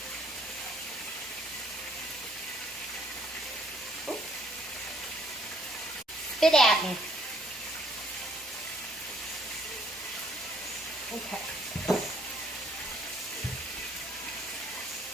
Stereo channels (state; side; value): normal; both; correlation 0.64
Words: Ooh. Spit at me. Okay.